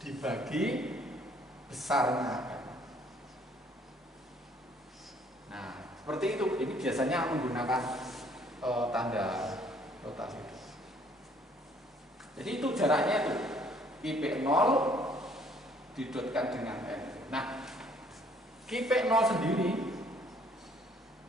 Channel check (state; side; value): normal; both; correlation 0.61